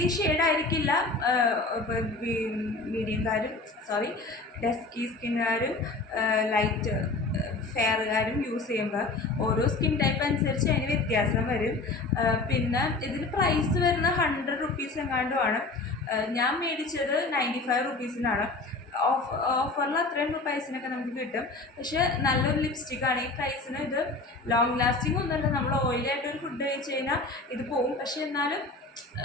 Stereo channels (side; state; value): right; quieter; 3.4 dB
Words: ഈ ഷെയ്ഡായിരിക്കില്ല ഡസ്കി സ്കിന്നുകാരും ലൈറ്റ് ഫെയറുകാരും യൂസ് ചെയ്യുമ്പോൾ ഓരോ സ്കിൻ ടൈപ്പ് അനുസരിച്ച് അതിന് വ്യത്യാസം വരും. പിന്നെ ഇതിന് പ്രൈസ് വരുന്ന 100 റുപ്പീസ് എങ്ങാണ്ടുമാണ്. ഞാൻ മേടിച്ചത് 95 റുപ്പീസിനാണ്. ഓഫറിൽ അത്രയും പ്രൈസിനൊക്കെ നമുക്ക് കിട്ടും. പക്ഷേ നല്ലൊരു ലിപ്സ്റ്റിക്കാണ്. ഈ പ്രൈസിന് ഇത് ലോങ് ലാസ്റ്റിംഗ് ഒന്നുമല്ല. നമ്മൾ ഓയിലായിട്ടൊരു ഫുഡ് കഴിച്ച് കഴിഞ്ഞാൽ ഇത് പോവും. പക്ഷേ എന്നാലും